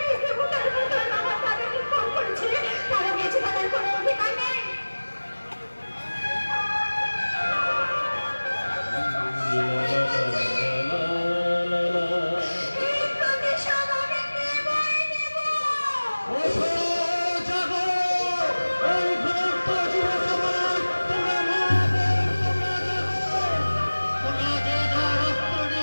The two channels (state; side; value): inverted; both; correlation -1.00